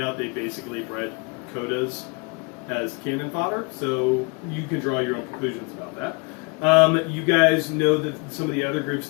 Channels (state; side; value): quieter; right; 31.3 dB